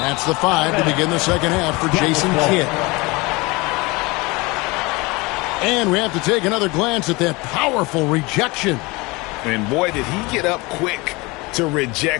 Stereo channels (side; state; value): right; quieter; 24.5 dB